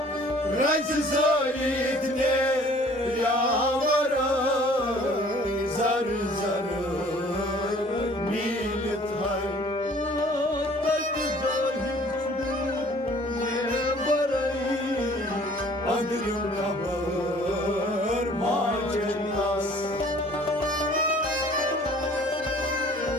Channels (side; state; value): both; normal; correlation 0.53